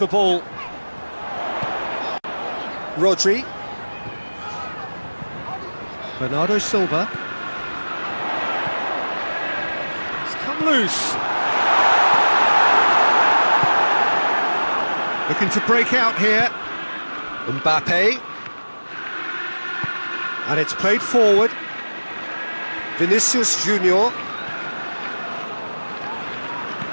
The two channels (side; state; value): both; inverted; correlation -1.00